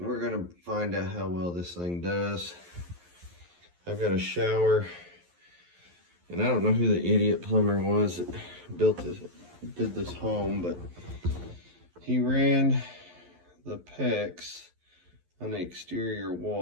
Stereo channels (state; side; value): late; left; 11 ms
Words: gonna find out how well this thing does. I've got a shower, and I don't know who the idiot plumber was that did this home, but he ran the PEX on the exterior